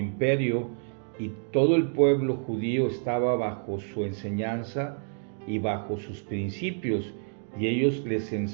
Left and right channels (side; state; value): left; silent; digital silence